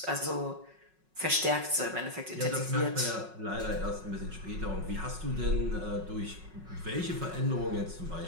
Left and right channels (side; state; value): left; late; 5.4 ms